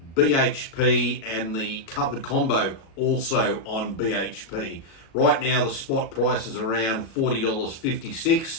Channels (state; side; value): late; right; 37 ms